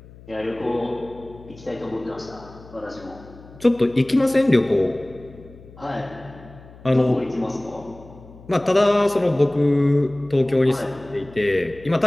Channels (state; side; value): noise; left; hum, 21 dB below the sound